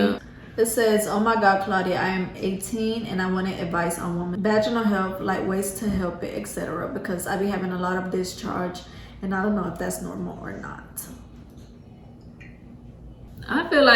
It says, oh my God, Claudia, I am 18 and I wanted advice on women vaginal health, like ways to help it, etc. Because I be having a lot of discharge, and I don't know if that's normal or not. I feel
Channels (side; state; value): both; identical; correlation 1.00